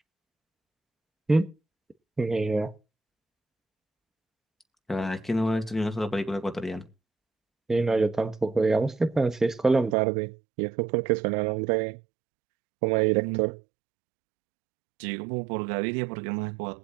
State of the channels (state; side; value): drops out; left; at 10.0 s